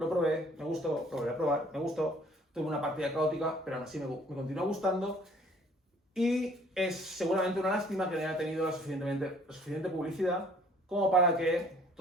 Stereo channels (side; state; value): both; normal; correlation 0.57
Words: probé, me gustó, lo volví a probar, me gustó. Tuve una partida caótica, pero aún así me continúa gustando. Y es seguramente una lástima que no haya tenido la suficiente publicidad como para que